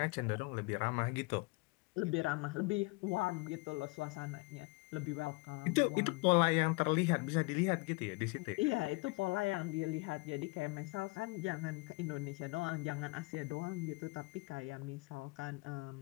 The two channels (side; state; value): right; quieter; 27.1 dB